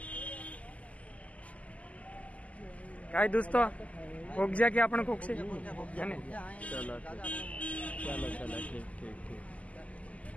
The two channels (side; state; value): right; late; 0.070 ms